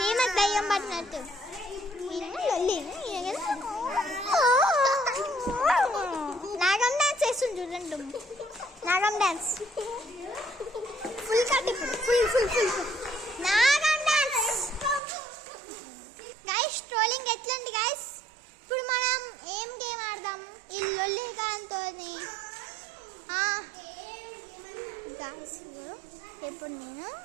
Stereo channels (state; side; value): drops out; left; at 15.0 s